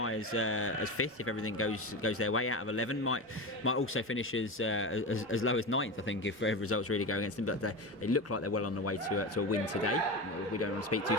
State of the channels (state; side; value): normal; both; correlation 0.22